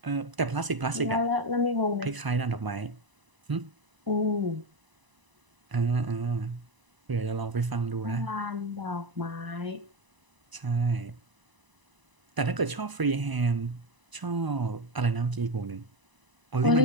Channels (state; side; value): late; left; 1.0 ms